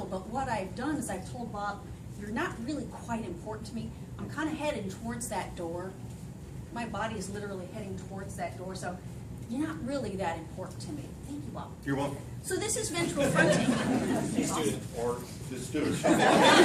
but what I've done is I've told Bob, you're not really quite important to me. I'm kind of heading towards that door. My body is literally heading towards that door, so you're not really that important to me. Thank you, Bob. You're welcome. So this is ventral fronting. Student. Or the student.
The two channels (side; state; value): both; identical; correlation 1.00